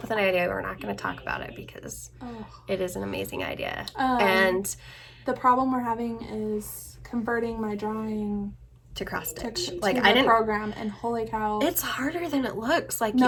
with an idea. We're not going to talk about it because it is an amazing idea. And the problem we're having is converting my drawing to cross stitch. Like I didn't program, and holy cow, it's harder than it looks. Like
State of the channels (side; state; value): both; identical; correlation 1.00